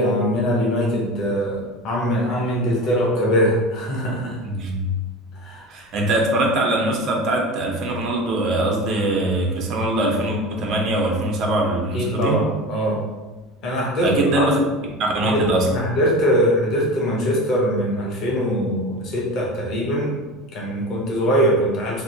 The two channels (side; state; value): both; normal; correlation 0.30